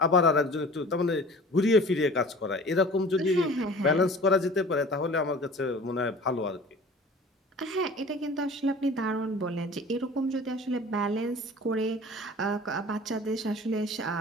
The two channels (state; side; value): normal; both; correlation 0.43